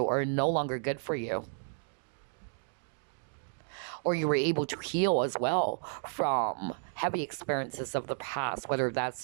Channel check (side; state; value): left; silent; digital silence